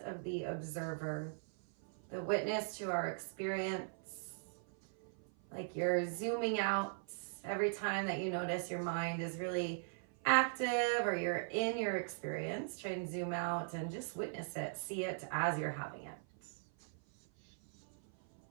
of the observer, the witness to our experience. Like you're zooming out every time that you notice your mind is really active or you're in your experience. Try and zoom out and just witness it, see it as you're having it.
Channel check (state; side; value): silent; left; 51 dB below the other